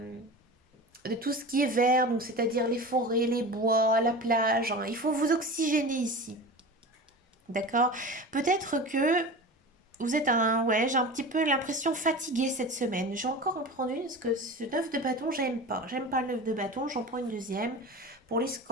de tout ce qui est vert, donc c'est-à-dire les forêts, les bois, la plage, hein. Il faut vous oxygéner ici. D'accord? Peut-être que vous êtes ouais, j'ai un petit peu l'impression fatiguée cette semaine. Je vais encore en prendre une parce que ce 9 de bâton, j'aime pas. J'aime pas le 9 de bâton, j'en prends une deuxième. Pour les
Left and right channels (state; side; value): normal; both; correlation 0.32